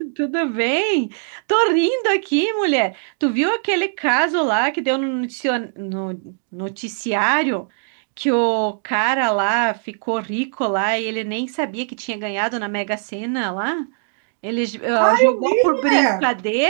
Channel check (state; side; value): silent; left; digital silence